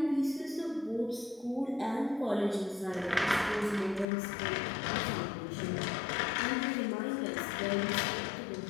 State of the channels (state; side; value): drops out; right; at 4.0 s